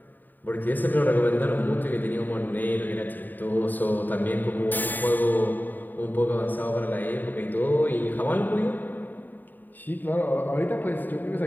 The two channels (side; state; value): right; late; 0.089 ms